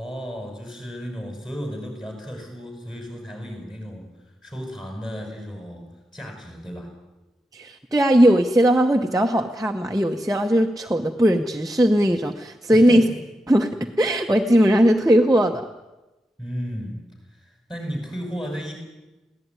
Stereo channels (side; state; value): both; normal; correlation 0.88